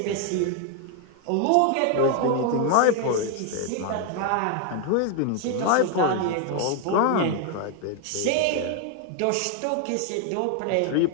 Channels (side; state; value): both; different; correlation 0.00